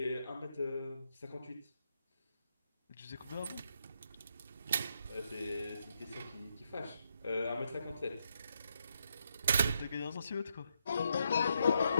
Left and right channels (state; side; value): inverted; both; correlation -0.79